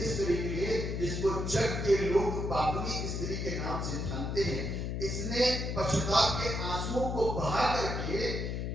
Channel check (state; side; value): noise; left; hum, 2 dB below the sound